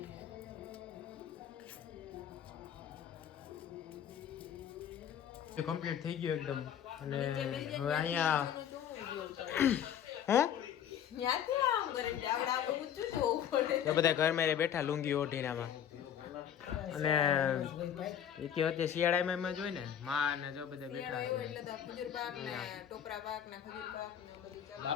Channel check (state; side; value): quieter; right; 9.4 dB